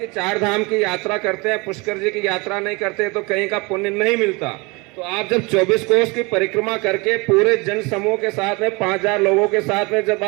4 धाम की यात्रा करते हैं, पुष्कर जी की यात्रा नहीं करते तो कहीं का पुण्य नहीं मिलता। तो आप जब 24 कोस की परिक्रमा करके पूरे जन समूह के साथ में 5000 लोगों के साथ में जब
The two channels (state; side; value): quieter; left; 26.9 dB